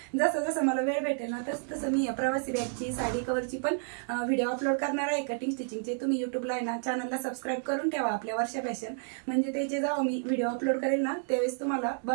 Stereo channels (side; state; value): left; silent; digital silence